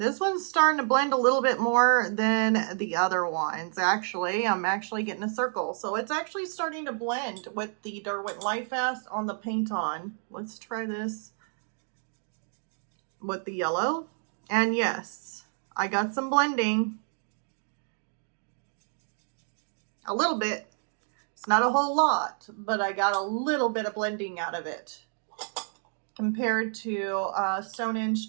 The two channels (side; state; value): left; silent; 58 dB below the other